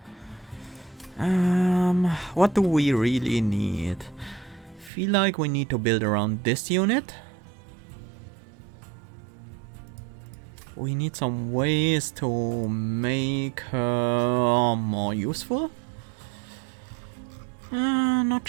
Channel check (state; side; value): drops out; left; at 4.9 s